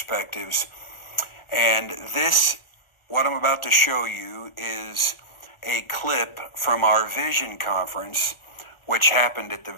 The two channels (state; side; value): late; right; 1.4 ms